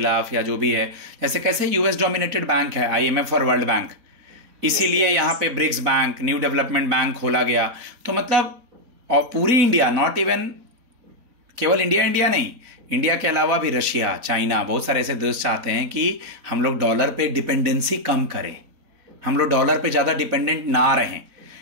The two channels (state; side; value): late; left; 4.1 ms